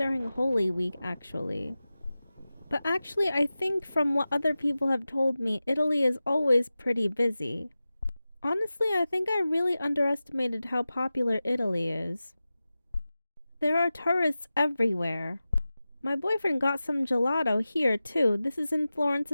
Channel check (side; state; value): both; inverted; correlation -0.95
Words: Holy Week, actually. But actually, I think from what other people have told me, Italy is always pretty busy. Honestly, I think I really underestimated how popular Italy is. There are tourists everywhere. My boyfriend got some gelato here too. This is in Florence